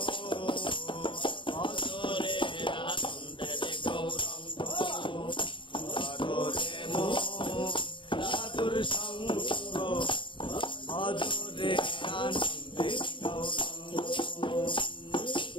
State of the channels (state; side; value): late; right; 0.24 ms